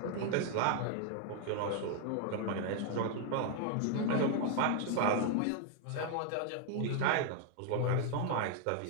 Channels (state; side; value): different; both; correlation 0.00